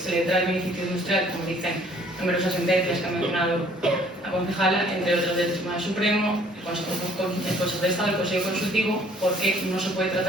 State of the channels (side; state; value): both; normal; correlation 0.59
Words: le trae el beneficio industrial, como dicen numerosas sentencias que ha mencionado la concejala, entre otras del Tribunal Supremo, el Consejo de Estado, el Consejo Consultivo, porque no se puede